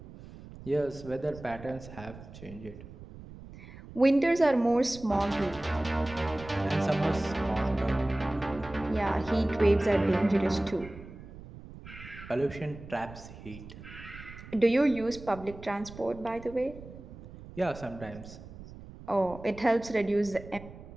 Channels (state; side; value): noise; right; rumble, 16 dB below the sound